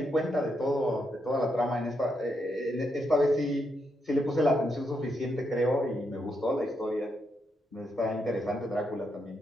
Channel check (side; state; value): both; normal; correlation 0.81